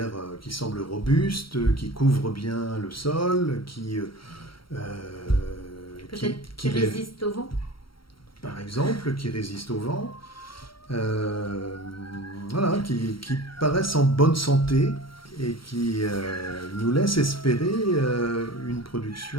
qui semblent robustes, qui couvrent bien le sol, qui résistent au vent. Par exemple, qui résistent au vent, voilà, qui paraissent en bonne santé et qui nous laissent espérer une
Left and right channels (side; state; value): right; late; 0.74 ms